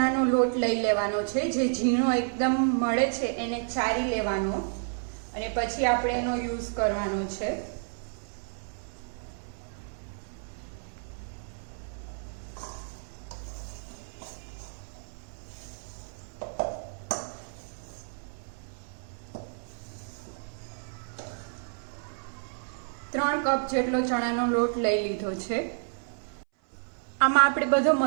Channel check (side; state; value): left; silent; 58 dB below the other